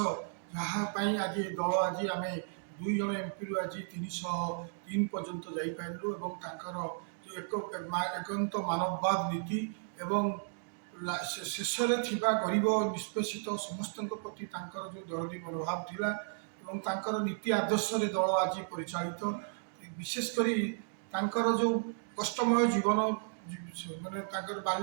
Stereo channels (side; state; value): left; silent; digital silence